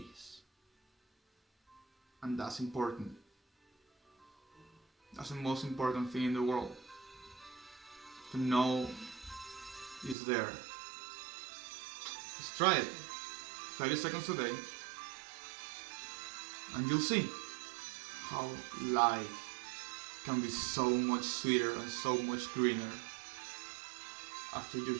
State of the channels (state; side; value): drops out; left; at 10.2 s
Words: And that's important. That's the most important thing in the world. To know it's there. Just try it. 30 seconds a day. And you'll see how life can be so much sweeter and so much greener after you